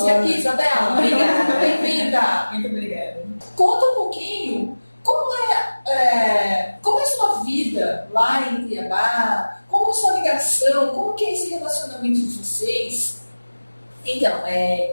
aqui, Isabela. Obrigada, bem-vinda! Muito obrigada. Conta um pouquinho como é a sua vida lá em Cuiabá, como é a sua ligação, como que é esse relacionamento de vocês? Então,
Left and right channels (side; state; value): both; inverted; correlation -1.00